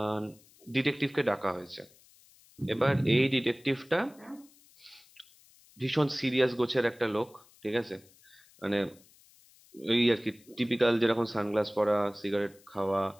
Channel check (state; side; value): noise; left; hiss, 28 dB below the sound